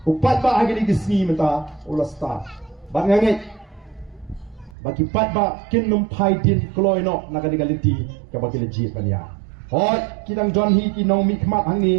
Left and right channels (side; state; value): left; drops out; at 4.8 s